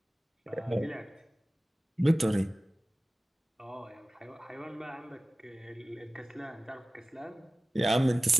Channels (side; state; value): both; normal; correlation 0.97